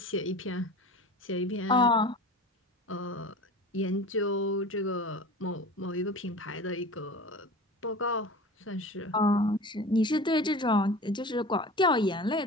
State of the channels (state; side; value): normal; both; correlation 0.37